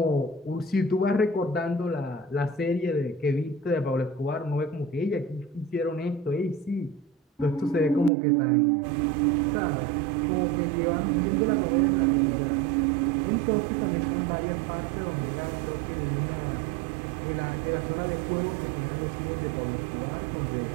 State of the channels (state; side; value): drops out; left; at 8.1 s